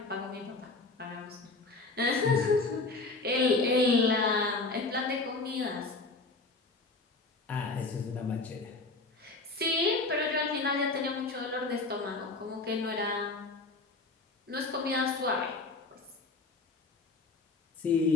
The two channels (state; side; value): quieter; right; 3.5 dB